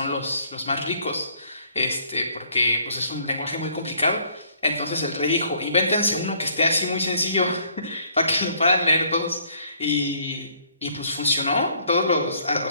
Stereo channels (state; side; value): inverted; both; correlation -0.63